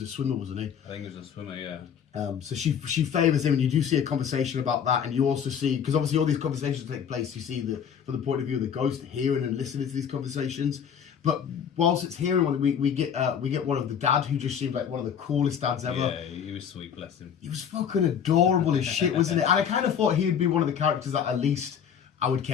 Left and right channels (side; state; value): right; quieter; 8.0 dB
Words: a swimmer, wasn't he? I think he was a swimmer, yeah. So she favours him, and you do see a conversation about that, and you also see, because obviously all these conversations take place, you see from the point of view of the ghost hearing and listening to these conversations. But whilst it's hearing one, we get one of the dad, who just seemed like one of the coolest dads ever. Yeah, he was sweet, bless him. He was fucking adorable as shit, wasn't it? And I kind of thought he would be one of the characters that at least I would